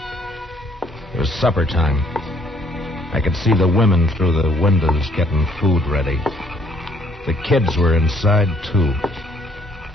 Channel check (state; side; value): normal; both; correlation 0.64